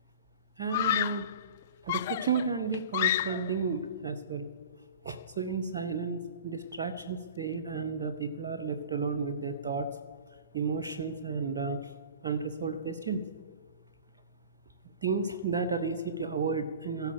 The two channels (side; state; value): both; inverted; correlation -0.39